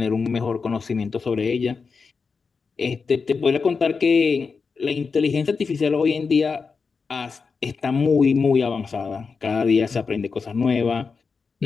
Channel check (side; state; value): right; quieter; 5.1 dB